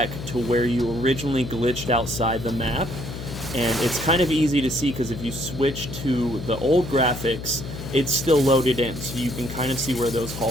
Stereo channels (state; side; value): noise; left; hum, 9 dB below the sound